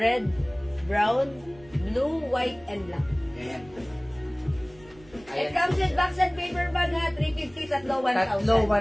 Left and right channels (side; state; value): right; noise; rumble, 25 dB below the sound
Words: brown, blue, white, and black. Ayan po. It comes with box and paper bag ha. 350, tatlo 1,000. Tatlo